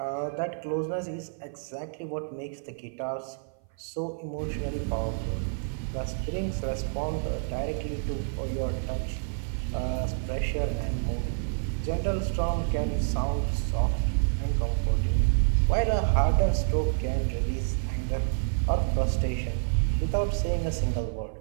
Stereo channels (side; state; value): left; silent; 56 dB below the other